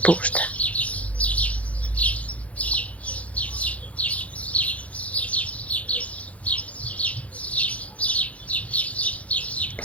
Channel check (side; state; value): right; late; 0.066 ms